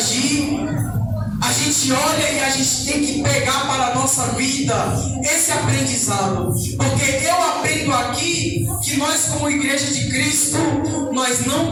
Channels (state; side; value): identical; both; correlation 1.00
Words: a gente olha e a gente tem que pegar para a nossa vida esse aprendizado. Porque eu aprendo aqui que nós, como igreja de Cristo, nós